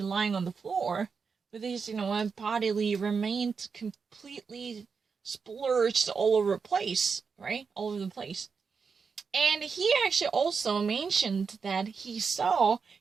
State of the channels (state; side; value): quieter; left; 5.5 dB